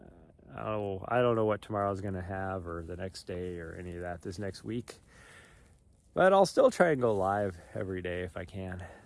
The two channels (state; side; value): identical; both; correlation 1.00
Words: I don't know what tomorrow's gonna have or the next day or any of that this next week, but I'll still try and go live every day if I can.